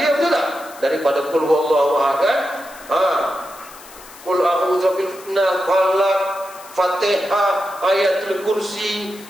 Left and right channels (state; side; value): noise; left; hiss, 20 dB below the sound